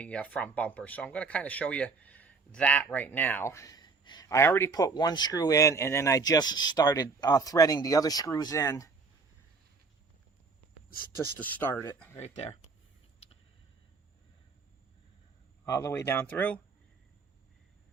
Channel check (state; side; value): quieter; left; 4.4 dB